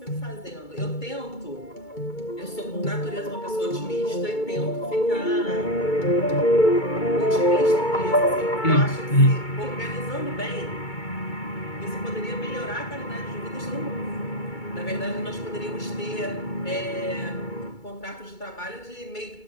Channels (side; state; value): right; late; 2.3 ms